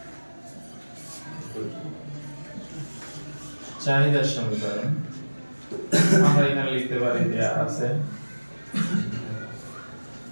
চাহিদার সমীকরণ আমরা এখানে লিখতে পারি দেয়া আছে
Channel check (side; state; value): both; inverted; correlation -1.00